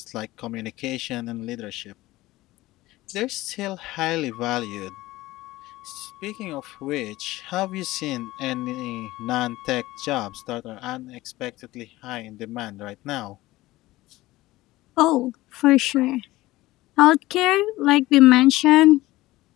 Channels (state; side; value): quieter; right; 18.1 dB